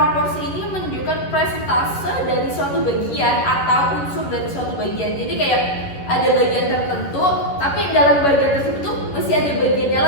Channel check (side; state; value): right; late; 11 ms